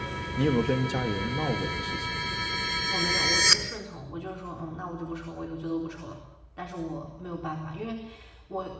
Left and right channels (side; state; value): both; identical; correlation 1.00